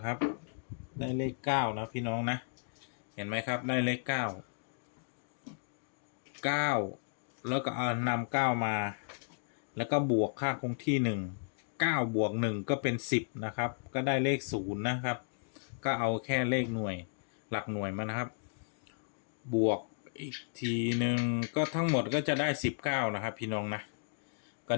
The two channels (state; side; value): silent; right; digital silence